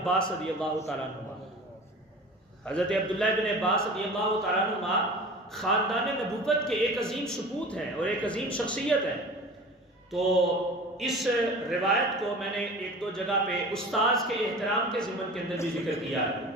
رضی اللہ تعالیٰ عنہ. حضرت عبداللہ ابن عباس رضی اللہ تعالیٰ عنہ خاندان نبوت کے ایک عظیم سپوت ہیں اور ایک عظیم شخصیت ہے. تو اس روایت کو میں نے ایک دو جگہ پہ استاذ کے احترام کے ضمن کے اندر بھی ذکر کیا ہے،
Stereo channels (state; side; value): normal; both; correlation 0.38